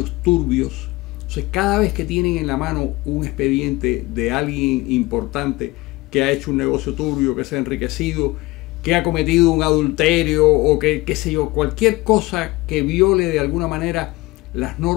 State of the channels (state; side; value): quieter; right; 20.9 dB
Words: turbios. Entonces, cada vez que tienen en la mano un expediente de alguien importante que ha hecho un negocio turbio, que se ha enriquecido, que ha cometido un adulterio o que, qué sé yo, cualquier cosa que viole de alguna manera las